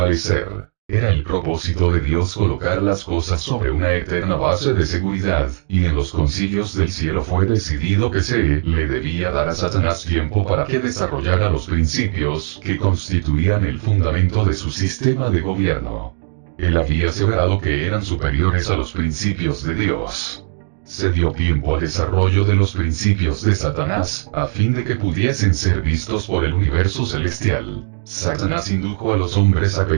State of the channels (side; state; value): left; silent; digital silence